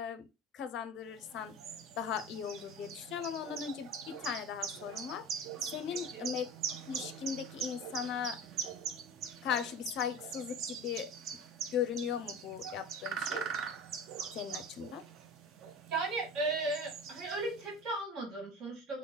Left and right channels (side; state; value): both; normal; correlation 0.34